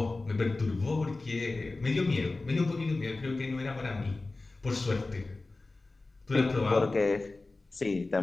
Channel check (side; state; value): right; quieter; 3.3 dB